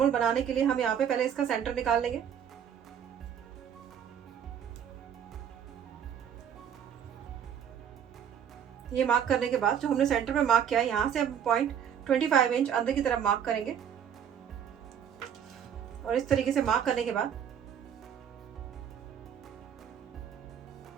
बनाने के लिए हम यहाँ पे पहले इसका सेंटर निकाल लेंगे। ये मार्क करने के बाद जो हमने सेंटर पे मार्क किया है, यहाँ से हम 0.25 इंच अंदर की तरफ मार्क करेंगे। और इस तरीके से मार्क करने के बाद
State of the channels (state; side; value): quieter; left; 8.6 dB